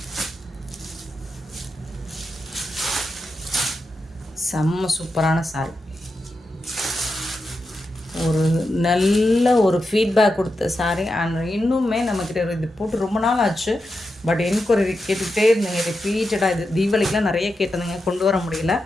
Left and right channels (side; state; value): both; normal; correlation 0.88